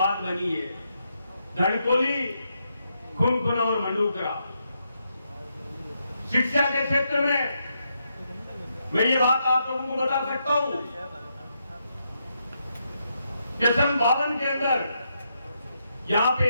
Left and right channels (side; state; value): both; inverted; correlation -0.81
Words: बनी है, धनकोली, खुनखुना और मंडूकरा। शिक्षा के क्षेत्र में मैं ये बात आप लोगों को बता सकता हूं कि सन 52 के अंदर यहां पे